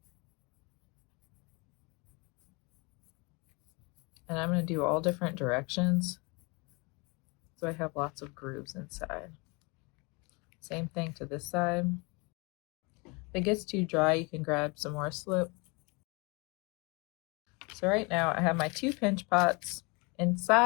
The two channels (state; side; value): quieter; right; 29.2 dB